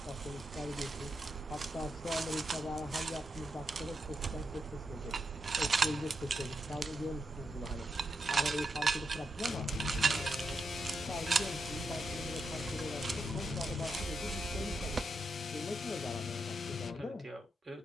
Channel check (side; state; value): both; normal; correlation 0.84